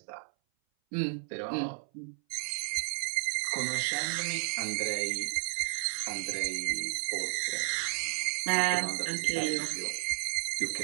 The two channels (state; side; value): silent; left; 56 dB below the other